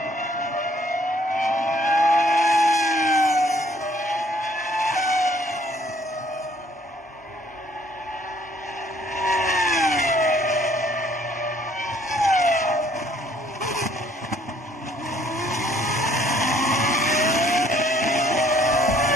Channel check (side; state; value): both; normal; correlation 0.62